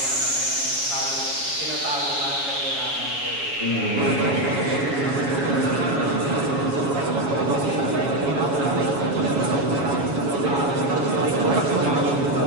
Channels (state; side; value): late; left; 7.2 ms